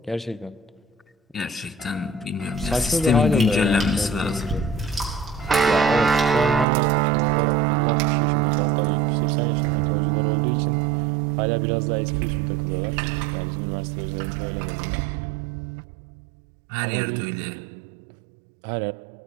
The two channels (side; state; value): left; drops out; at 6.7 s